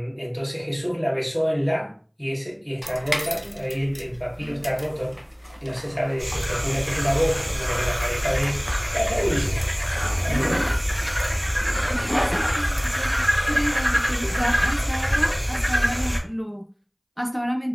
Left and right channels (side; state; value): both; identical; correlation 1.00